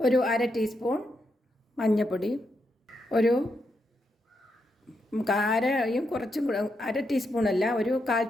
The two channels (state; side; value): normal; both; correlation 0.82